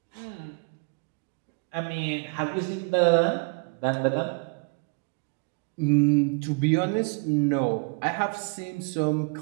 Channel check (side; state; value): left; quieter; 31.7 dB